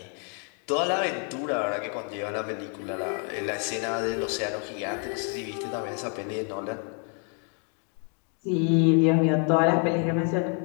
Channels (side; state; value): right; quieter; 39.7 dB